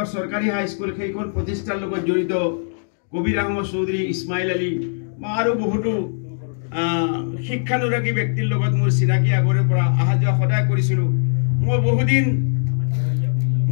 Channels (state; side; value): silent; right; digital silence